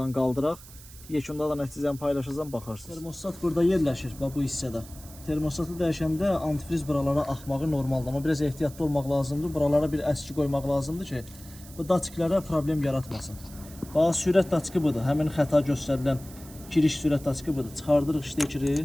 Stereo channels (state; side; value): noise; right; hiss, 19 dB below the sound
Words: qaldıraq. Yekunda da nəticəni paylaşacağım, baxarsınız. Termostat burada yerləşir, bax bu hissədə. Termostatı dəyişəndə antifriz buralara axmağı normaldır. Amma biraz ehtiyatlı olmaq lazımdır. Buralara bir əski qoymaq lazımdır ki, bu daçklərə problem yaratmasın. Bax, sürət daçkı budur. Həmin xəta göstərilən giriş sürət daçkı budur. Çıxardırıq